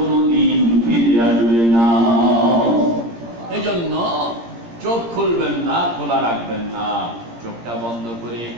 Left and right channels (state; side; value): late; left; 17 ms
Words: ফিরে আসবে না। এজন্য চোখ খুলবেন না, খোলা রাখবেন না। চোখটা বন্ধ করে